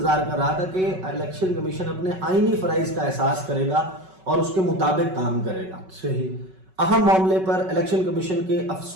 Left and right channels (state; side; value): late; left; 5.3 ms